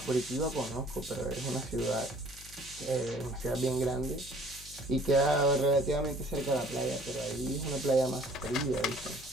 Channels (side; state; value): left; noise; hum, 18 dB below the sound